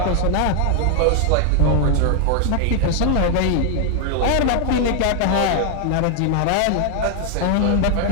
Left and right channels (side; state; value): both; different; correlation 0.00